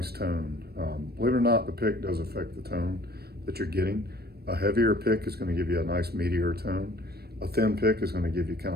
tone. Believe it or not, the pick does affect the tone that you're getting. A heavier pick is going to give you a nice meatier tone. A thin pick is going to give you kind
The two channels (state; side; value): late; left; 0.46 ms